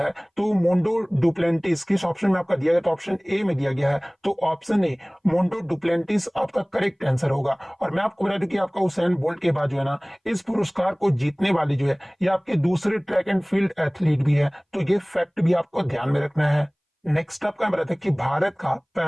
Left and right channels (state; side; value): identical; both; correlation 1.00